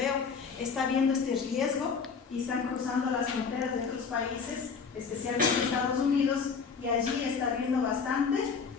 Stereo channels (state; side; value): quieter; right; 5.6 dB